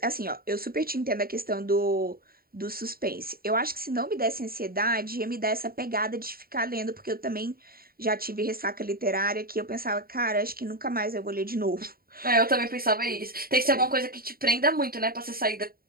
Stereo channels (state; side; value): late; left; 0.43 ms